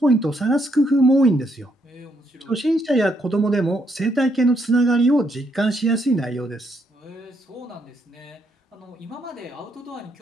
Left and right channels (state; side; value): normal; both; correlation 0.75